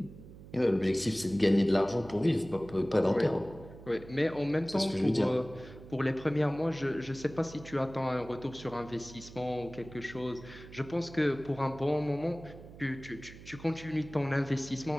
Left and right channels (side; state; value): right; noise; hum, 17 dB below the sound